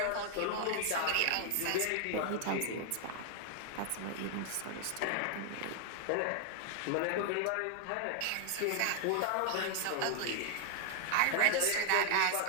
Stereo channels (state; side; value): different; both; correlation 0.00